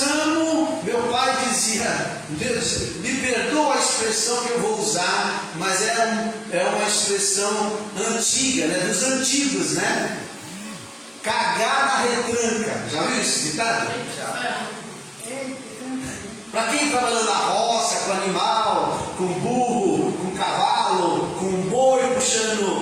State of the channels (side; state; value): both; identical; correlation 1.00